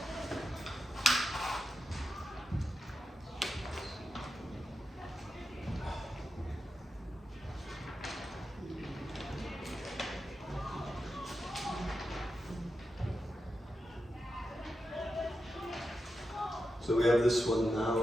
So we have this one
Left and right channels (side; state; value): both; normal; correlation 0.88